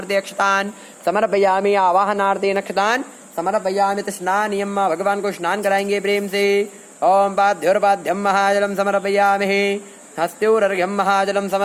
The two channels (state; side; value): identical; both; correlation 1.00